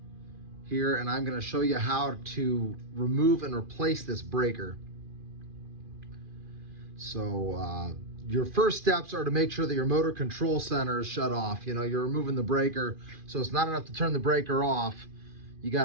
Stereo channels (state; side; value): late; left; 2.4 ms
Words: here, and I'm going to show you how to remove and replace this breaker. So your first steps are to make sure that your motor control center is shut off. You know, you're removing the breaker, so it's not enough to turn the breaker off. You